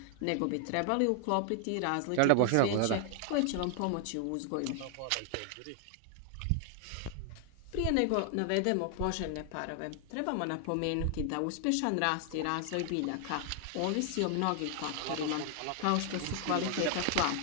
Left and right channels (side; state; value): both; different; correlation 0.00